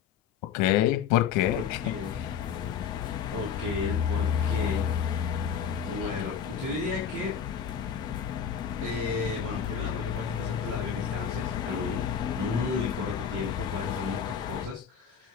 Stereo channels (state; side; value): quieter; right; 7.6 dB